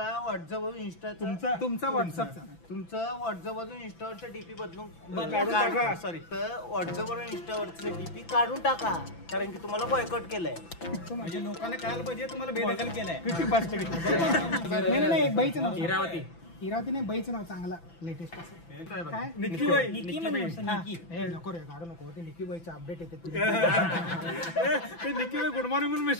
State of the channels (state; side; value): late; right; 6.0 ms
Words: व्हॉट्सअपवरून इंस्टा तुमचा व्हॉट्सअपचा तुमचं व्हॉट्सअपवरून इंस्टावरचं डीपी बदलून काढून टाका. सॉरी तर व्हॉट्सअपवरून इंस्टावरचं डीपी काढून टाका कारण की तुम्हाला बॉयकॉट केलंय. म्हणजे लोकांना कळायला पाहिजे तुम्हाला बेदखल केलाय. नाही एक बाईचं नाव इरावती इरावती नाही बाईचं नाव चांगला लेटेस्ट असं काय निकी बाई निकी हे नको रे गाडू नको ते निकी बाईचं अपडेट येते ते निकी गुड मॉर्निंग म्हणून